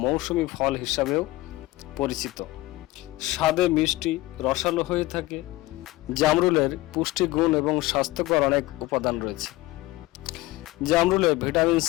মৌসুমী ফল হিসাবেও পরিচিত। স্বাদে মিষ্টি, রসালো হয়ে থাকে। জামরুলের পুষ্টিগুণ এবং স্বাস্থ্যকর অনেক উপাদান রয়েছে। জামরুলে ভিটামিন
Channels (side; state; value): right; quieter; 18.8 dB